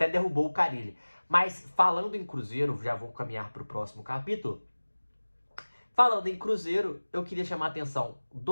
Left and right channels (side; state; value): both; inverted; correlation -1.00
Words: derrubou o Carille. Mas falando em Cruzeiro, já vou caminhar pro próximo capítulo. Falando em Cruzeiro, eu queria chamar a atenção